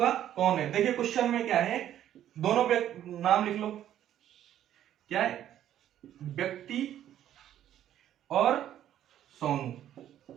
कौन है। देखिए क्वेश्चन में क्या है, दोनों नाम लिख लो, क्या है, व्यक्ति और सोनू,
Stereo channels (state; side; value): quieter; left; 11.4 dB